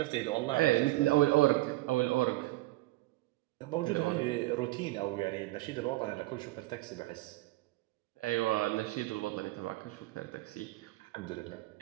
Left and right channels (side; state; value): left; quieter; 19.2 dB